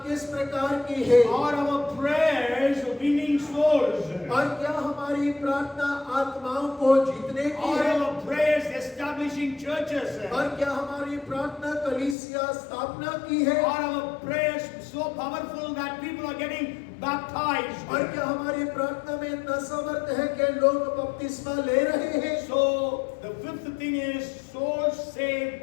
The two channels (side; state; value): right; drops out; at 12.2 s